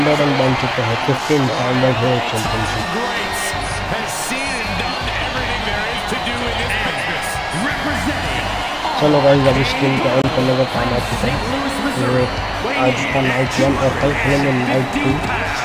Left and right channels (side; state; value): both; identical; correlation 1.00